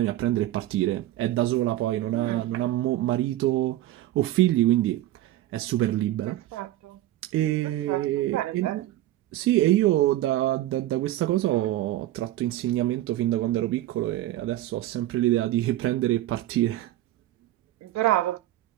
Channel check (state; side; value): quieter; left; 14.7 dB